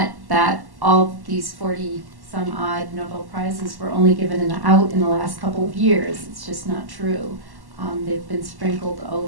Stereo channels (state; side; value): late; left; 1.1 ms